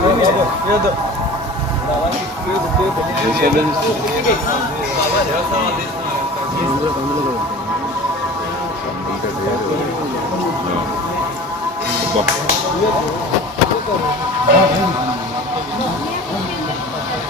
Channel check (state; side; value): normal; both; correlation 0.40